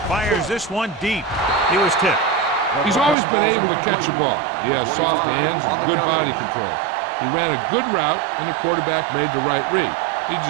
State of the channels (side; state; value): left; drops out; at 3.2 s